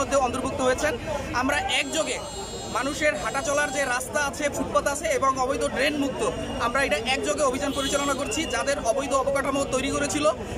অন্তর্ভুক্ত হয়েছেন। আমরা একযোগে মানুষের হাঁটা চলার যে রাস্তা আছে, ফুটপাত আছে এবং অবৈধ ড্রেন মুক্ত, আমরা এটা একযোগে অভিযান পরিচালনা করছি। যাদের অবৈধ অবকাঠামো তৈরি করেছিল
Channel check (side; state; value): both; identical; correlation 1.00